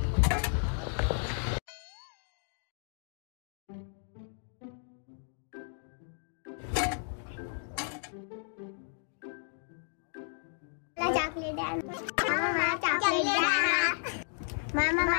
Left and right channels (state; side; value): silent; right; 55 dB below the other